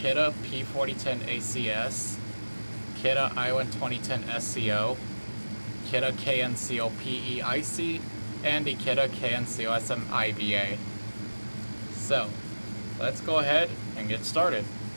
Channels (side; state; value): both; inverted; correlation -1.00